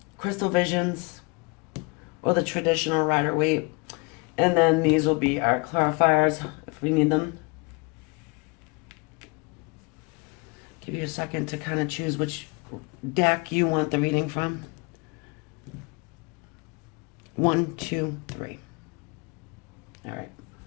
Crystal Visions, or the traditional Rider-Waite. And then these will be our clarifiers if we need them. Give you a second to kind of choose which deck you want the reading from. 1, 2, 3. All right.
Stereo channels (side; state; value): right; quieter; 29.6 dB